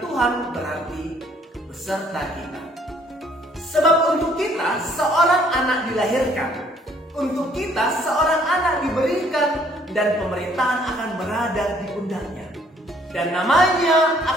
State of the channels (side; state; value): both; normal; correlation 0.62